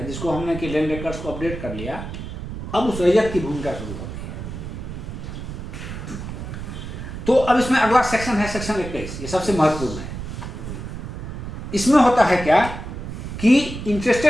जिसको हमने कि लैंड रिकॉर्ड्स को अपडेट कर लिया। अब उस रैयत की भूमिका शुरू होती है। तो अब इसमें अगला सेक्शन है सेक्शन 21, ये सबसे महत्वपूर्ण है। इसमें होता है क्या कि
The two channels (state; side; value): noise; right; rumble, 8 dB below the sound